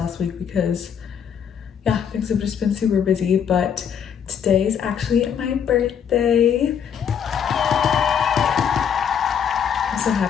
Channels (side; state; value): right; quieter; 7.9 dB